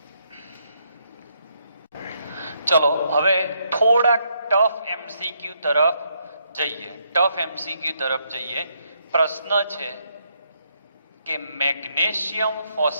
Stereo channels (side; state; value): both; inverted; correlation -0.75